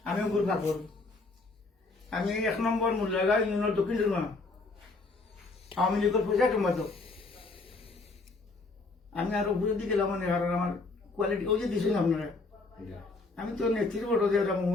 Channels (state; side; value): quieter; right; 3.6 dB